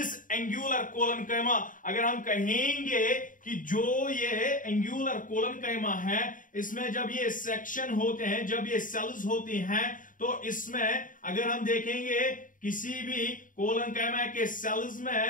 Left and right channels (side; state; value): right; late; 0.39 ms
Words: angular coloncyma? अगर हम कहेंगे कि जो ये angular coloncyma है, इसमें जब ये सेक्शन होते हैं, जब ये सेल्स होती हैं, तो इसमें अगर हम देखेंगे किसी भी coloncyma के सेल्स